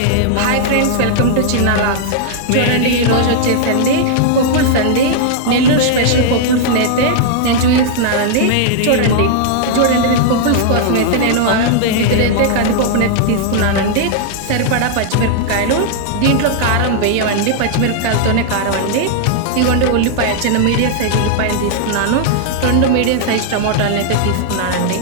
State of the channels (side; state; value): both; different; correlation -0.01